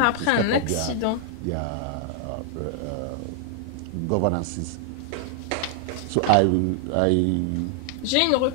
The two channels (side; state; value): both; different; correlation 0.00